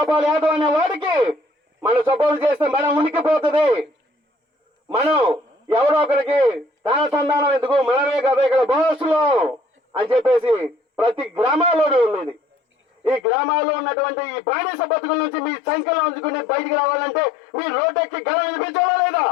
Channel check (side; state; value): right; drops out; at 13.2 s